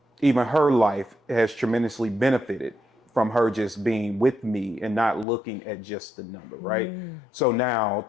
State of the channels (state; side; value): drops out; right; at 5.2 s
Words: even her life has tremendously benefited from her just being with me and not looking at just the number, right? So now,